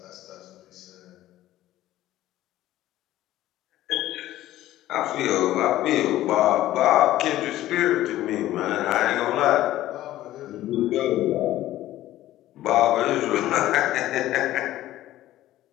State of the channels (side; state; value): right; quieter; 14.5 dB